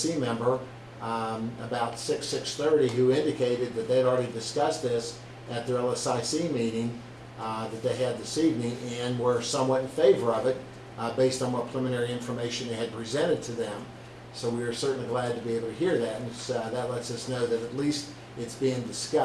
member about 6:30 who indicated that they'd already discussed this at their LSIC meeting that they had this evening, and were somewhat in favor of it based on what preliminary information they had presented to them. So we are certainly glad to be able to hear that, and that lets us know that at least it's being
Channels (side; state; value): both; identical; correlation 1.00